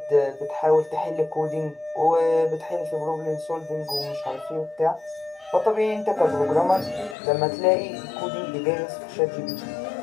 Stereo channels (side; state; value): right; drops out; at 7.2 s